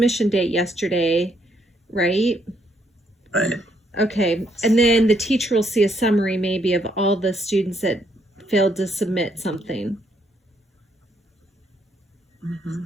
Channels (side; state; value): both; normal; correlation 0.72